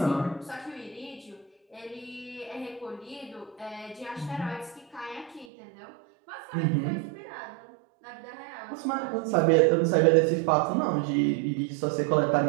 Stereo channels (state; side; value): drops out; left; at 5.5 s